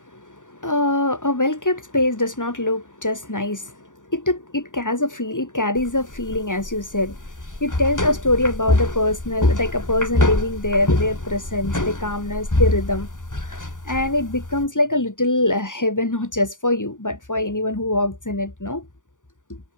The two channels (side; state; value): right; late; 0.87 ms